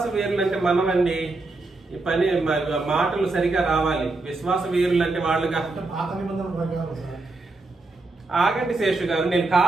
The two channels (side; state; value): left; quieter; 3.3 dB